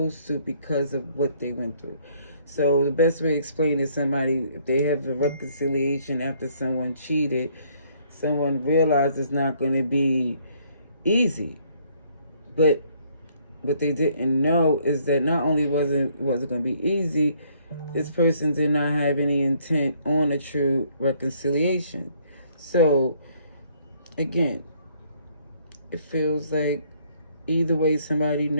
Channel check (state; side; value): inverted; both; correlation -0.65